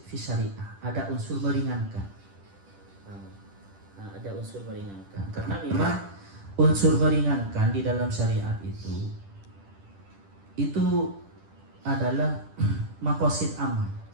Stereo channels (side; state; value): left; late; 10 ms